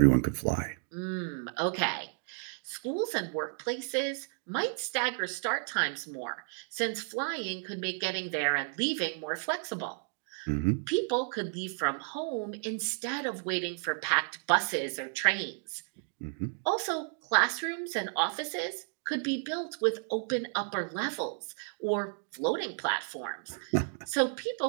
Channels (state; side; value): silent; left; 56 dB below the other